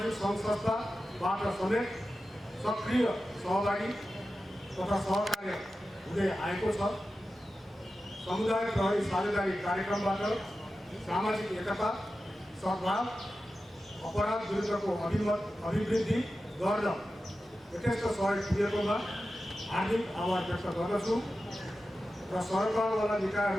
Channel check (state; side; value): normal; both; correlation 0.93